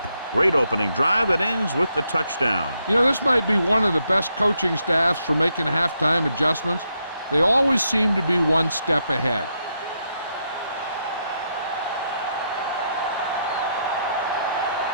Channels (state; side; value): inverted; both; correlation -0.80